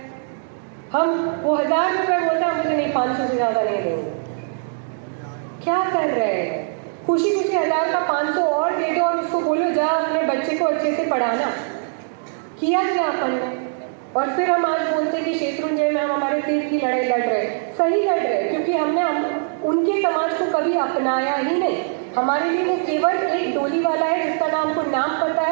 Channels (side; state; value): left; silent; 65 dB below the other